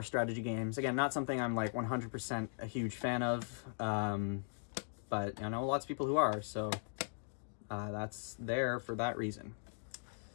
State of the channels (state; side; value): silent; right; digital silence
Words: strategy games. Again, not something I'm like 100% a huge fan of, but I know lots of people who are, so that's there for that reason.